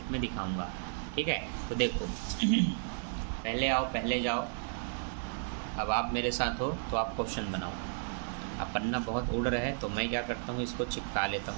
में दिखाऊंगा। ठीक है, तो देखो पहले आओ पहले जाओ। अब आप मेरे साथ हो तो आप क्वेश्चन बनाओ। अब पन्ना बहुत उड़ रहा है तो मैं क्या करता हूँ, इसको चिपका लेता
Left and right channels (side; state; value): left; silent; 55 dB below the other